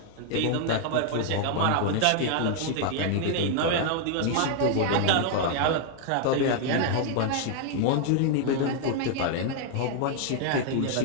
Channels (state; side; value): different; both; correlation 0.00